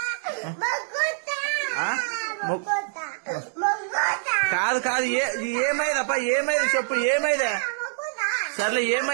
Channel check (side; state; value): left; silent; 62 dB below the other